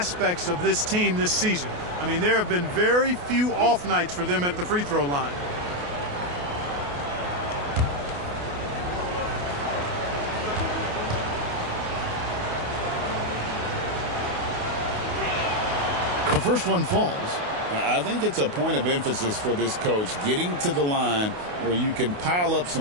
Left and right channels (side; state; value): left; late; 28 ms